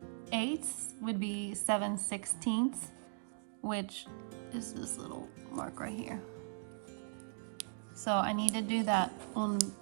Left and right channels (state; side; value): silent; left; digital silence